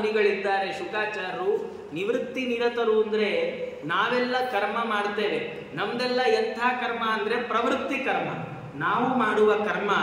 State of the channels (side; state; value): both; identical; correlation 1.00